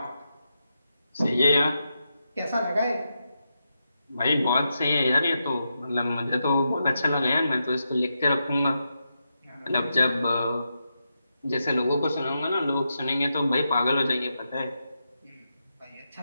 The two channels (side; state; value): both; inverted; correlation -0.86